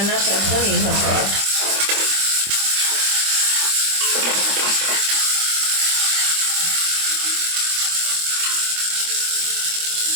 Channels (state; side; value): late; left; 25 ms